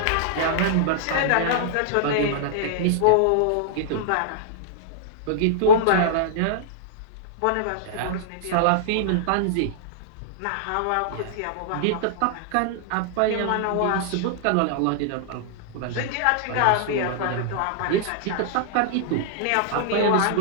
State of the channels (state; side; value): different; both; correlation -0.02